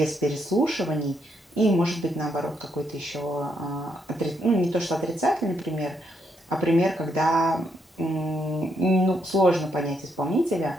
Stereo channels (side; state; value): both; normal; correlation 0.77